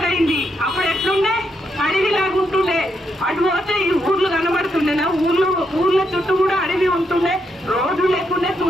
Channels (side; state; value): both; normal; correlation 0.79